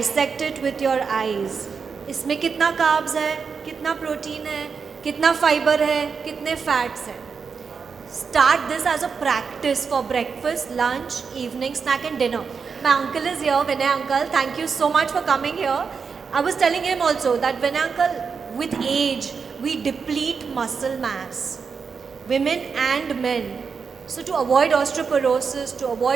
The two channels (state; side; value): quieter; left; 5.6 dB